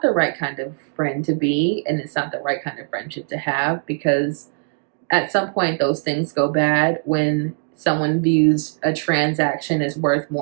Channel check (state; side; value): silent; left; digital silence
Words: right kind of friend to be, and it's not the right kind of friendship to have, because at some point those things go bad when someone views a transaction as worth